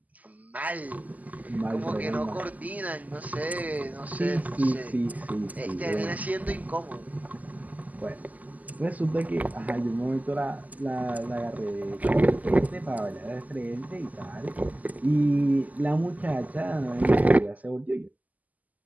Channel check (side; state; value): left; late; 0.078 ms